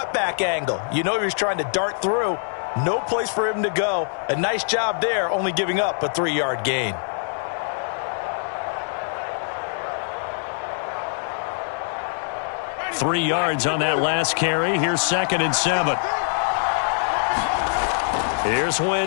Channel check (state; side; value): silent; right; digital silence